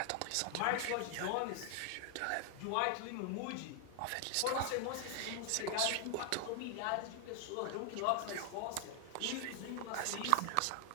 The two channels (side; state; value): both; different; correlation 0.00